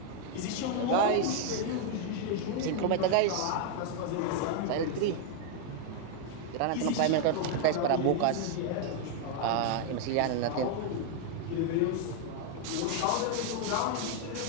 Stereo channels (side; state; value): both; different; correlation 0.00